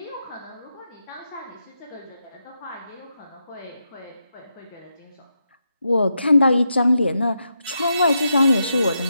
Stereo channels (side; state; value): both; inverted; correlation -0.85